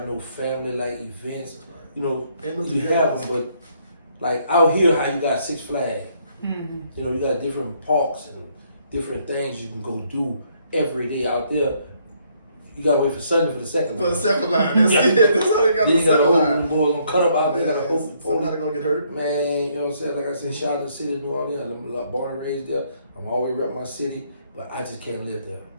no family like events. You know, you have them, but like out here, how you got Six Flags. Mm-hmm. You know, you got different parks and different things you can go do every day out there. You gotta wait for Sunday for the second line. For the second line, that's it. That's how they got the second line. Boys gonna cut up out there. Gotta hope somebody gonna get hurt. Man, you know what I'm saying? Like I said, shout out to the city of New Orleans. I'm born and raised there. I'm always rep my city, but I just can't live there.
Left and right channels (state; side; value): inverted; both; correlation -0.69